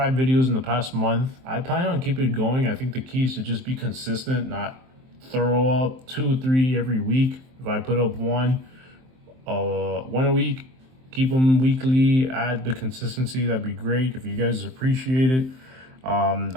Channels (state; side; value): late; left; 23 ms